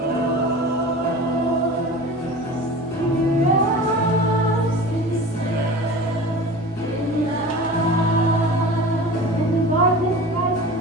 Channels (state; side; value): normal; both; correlation 0.36